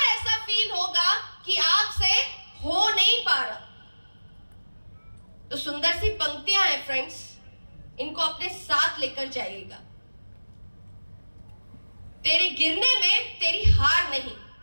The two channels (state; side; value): inverted; both; correlation -1.00